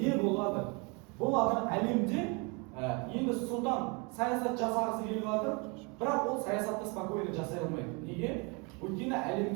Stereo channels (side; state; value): left; quieter; 30.9 dB